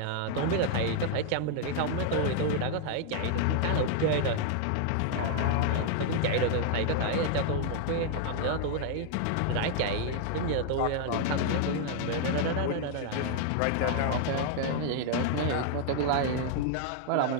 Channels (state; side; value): different; both; correlation 0.00